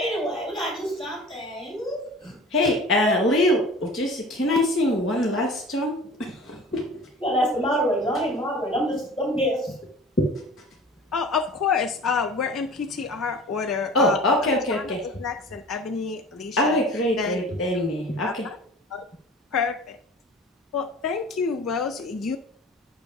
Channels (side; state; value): both; normal; correlation 0.41